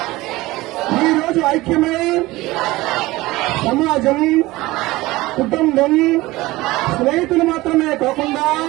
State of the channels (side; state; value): left; quieter; 19.4 dB